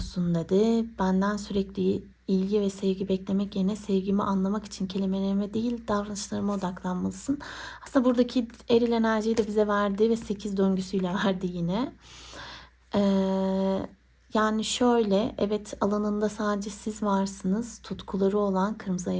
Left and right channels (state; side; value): identical; both; correlation 1.00